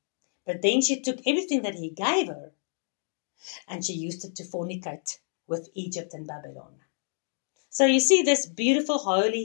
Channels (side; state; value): right; silent; digital silence